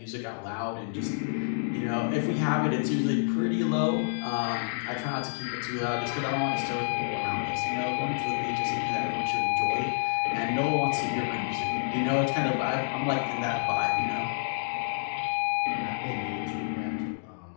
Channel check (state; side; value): silent; right; digital silence